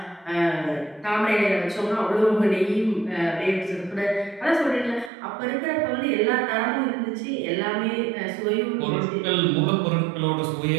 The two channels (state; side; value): drops out; left; at 5.1 s